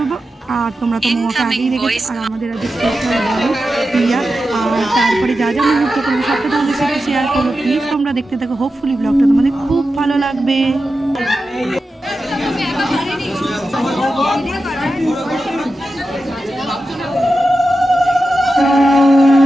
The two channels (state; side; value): normal; both; correlation 0.91